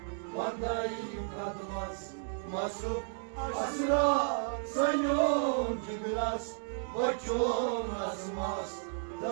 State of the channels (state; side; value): silent; left; digital silence